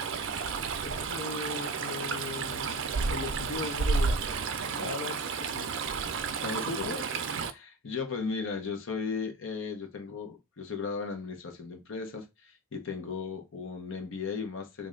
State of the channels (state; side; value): normal; both; correlation 0.27